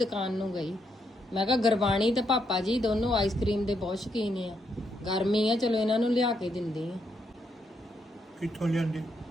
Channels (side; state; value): both; normal; correlation 0.78